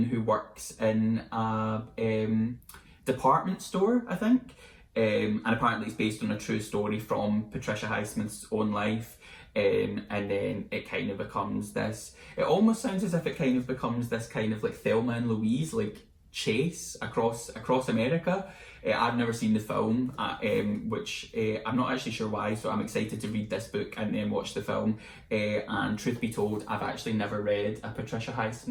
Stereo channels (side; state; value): both; identical; correlation 1.00